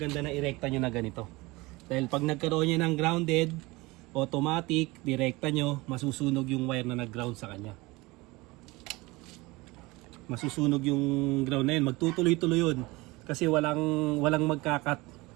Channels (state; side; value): quieter; left; 22.5 dB